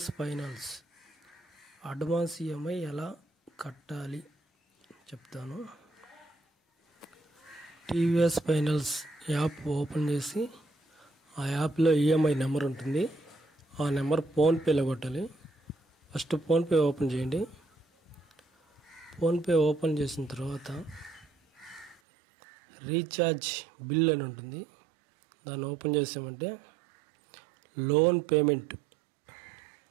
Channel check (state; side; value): drops out; left; at 22.0 s